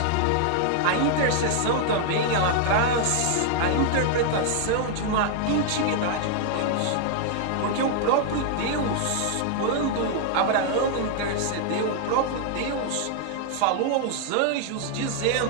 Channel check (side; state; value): both; different; correlation 0.00